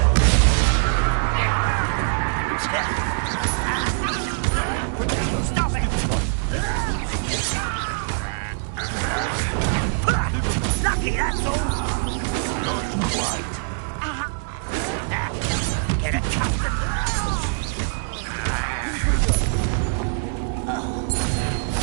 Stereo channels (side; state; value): left; silent; digital silence